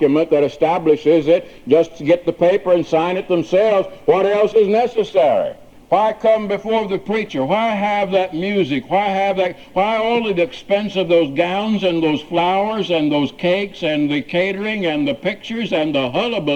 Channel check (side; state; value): both; identical; correlation 1.00